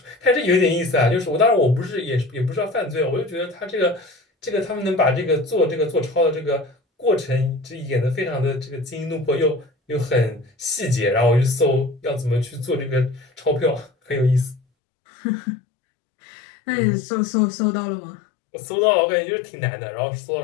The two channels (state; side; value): drops out; right; at 14.6 s